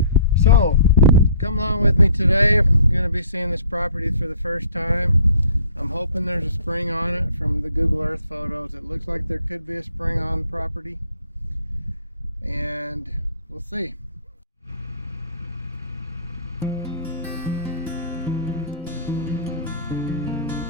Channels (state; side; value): inverted; both; correlation -0.54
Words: So, come along with me today. I'm going to be seeing this property for the first time. I'm hoping there's a spring on it. From the Google Earth photos, it looks like there could be a spring on the property. And we'll see.